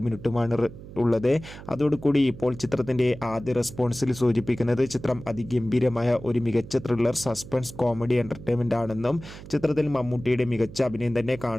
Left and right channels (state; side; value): noise; right; hum, 15 dB below the sound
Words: മിനിറ്റുമാണ് ഉള്ളത്. അതോടുകൂടി ഇപ്പോൾ ചിത്രത്തിൻ്റെ ആദ്യ റെസ്പോൺസിൽ സൂചിപ്പിക്കുന്നത് ചിത്രം അതിഗംഭീരമായ ഒരു മികച്ച ത്രില്ലർ, സസ്പെൻസ്, കോമഡി എൻ്റർടൈൻമെൻ്റ് ആണെന്നും ചിത്രത്തിൽ മമ്മൂട്ടിയുടെ മികച്ച അഭിനയം തന്നെ